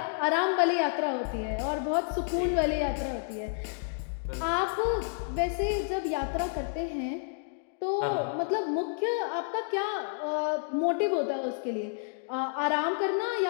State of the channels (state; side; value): silent; right; digital silence